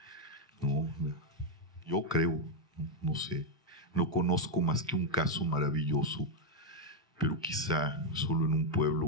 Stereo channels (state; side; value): normal; both; correlation 0.01